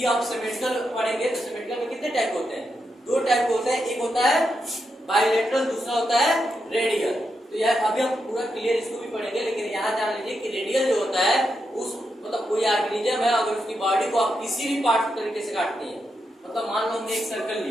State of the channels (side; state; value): both; normal; correlation 0.84